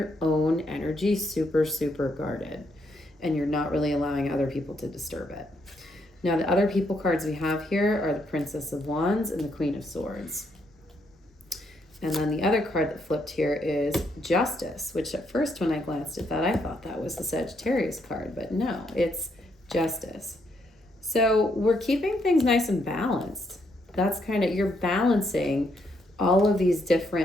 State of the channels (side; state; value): both; normal; correlation 0.75